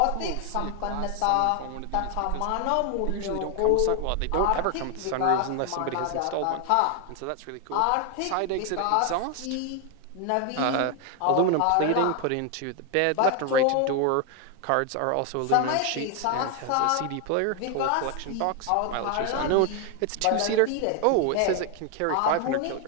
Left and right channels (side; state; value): both; different; correlation 0.01